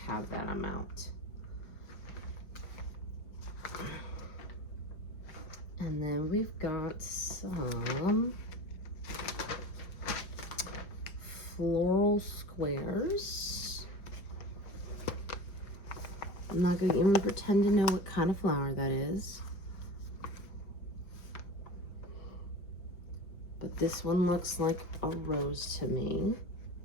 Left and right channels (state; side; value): late; right; 5.0 ms